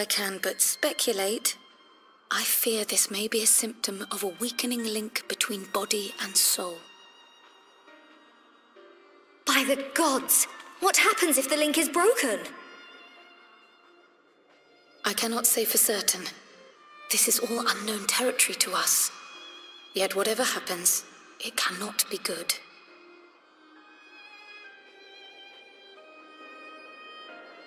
can but speculate, I fear this may be a symptom of a weakening link between body and soul. By the gods! What happens if the link is broken? I cannot say for certain. This is all unknown territory to us. Yet whatever happens, it cannot be good.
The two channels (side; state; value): both; identical; correlation 1.00